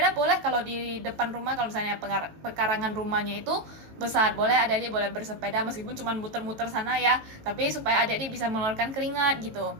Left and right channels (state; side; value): late; left; 18 ms